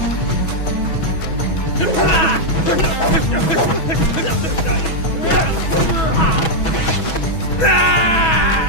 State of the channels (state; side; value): late; right; 6.2 ms